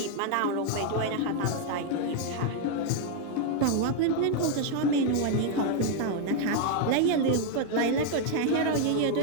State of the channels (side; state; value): both; different; correlation 0.00